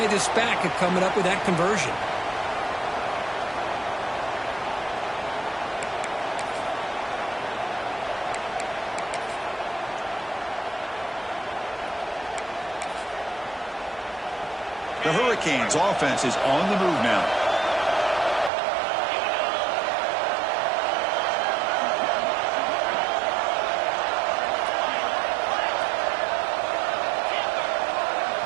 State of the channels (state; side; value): drops out; left; at 18.5 s